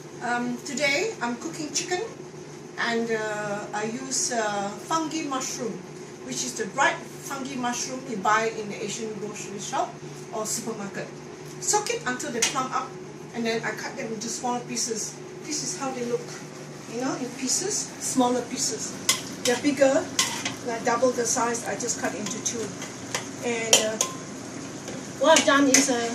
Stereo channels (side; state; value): both; identical; correlation 1.00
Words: Today I'm cooking chicken, and I use fungi mushroom, which is the dried fungi mushroom you buy in the Asian grocery shop or supermarket. Soak it until they plump up, and then I cut them into smaller pieces. This is how they look, you know, in pieces, smaller pieces. They're bigger, like double the size. I just cut into two. And what I've done is